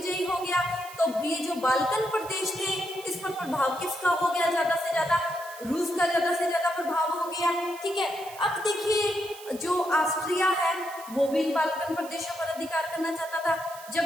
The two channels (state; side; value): noise; right; hiss, 17 dB below the sound